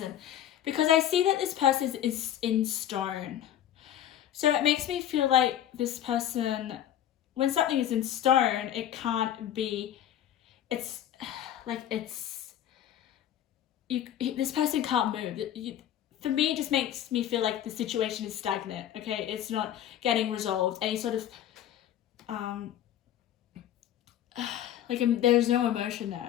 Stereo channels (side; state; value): right; quieter; 11.1 dB